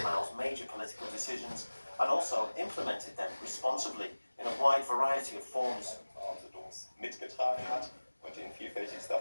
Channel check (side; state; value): both; inverted; correlation -1.00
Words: major political decisions and also implemented them responsibly in a wide variety of forms. Mitgetragen hat und in vielfältigster